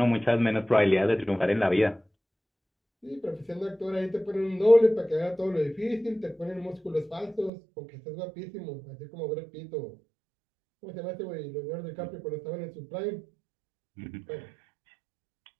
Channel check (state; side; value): drops out; left; at 7.5 s